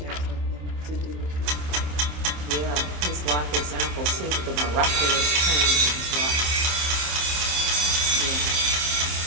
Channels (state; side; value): late; left; 27 ms